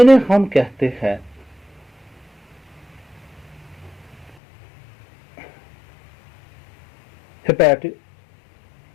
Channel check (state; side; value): drops out; right; at 4.4 s